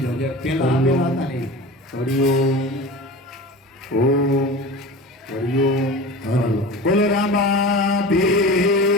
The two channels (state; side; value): normal; both; correlation 0.33